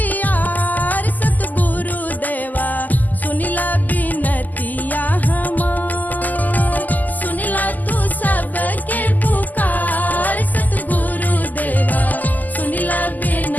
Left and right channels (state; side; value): late; right; 0.082 ms